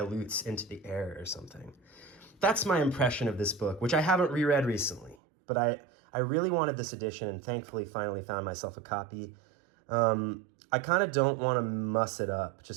into the air or something. That's my impression of this book, which I haven't reread recently, but I really wanted this edition and thankfully finally found myself a copy. I kind of don't want to muss it up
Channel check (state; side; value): drops out; left; at 5.2 s